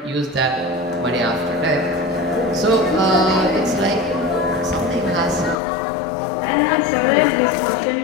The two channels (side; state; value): right; drops out; at 5.6 s